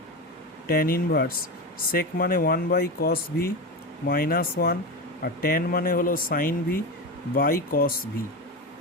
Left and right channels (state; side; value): normal; both; correlation 0.20